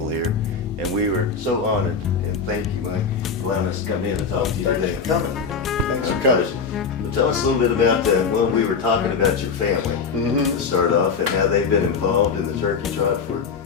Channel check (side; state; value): right; quieter; 5.6 dB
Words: here. And we were so honored, and thank you, Mike, for allowing us to come in and talk to you today. Thanks for coming. Thanks for coming. Well, tell us a little bit about, well, we were talking about your family to start off, and how they've been involved in the Turkey Trot